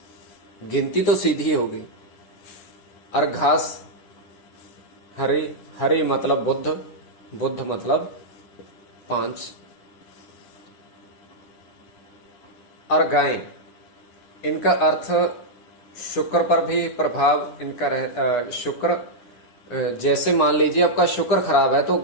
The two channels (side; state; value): right; late; 9.7 ms